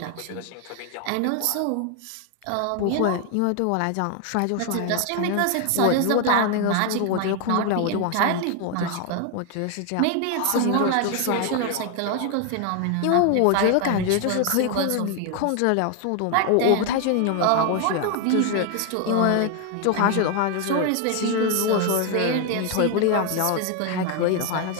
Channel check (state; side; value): different; both; correlation 0.01